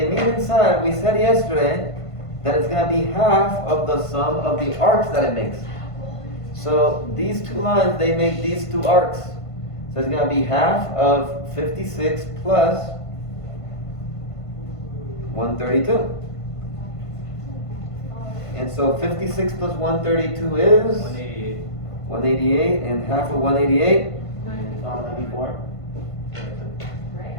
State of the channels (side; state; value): right; late; 1.5 ms